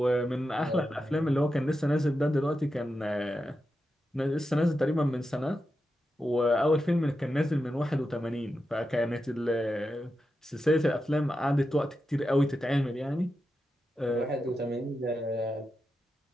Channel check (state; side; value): normal; both; correlation 0.89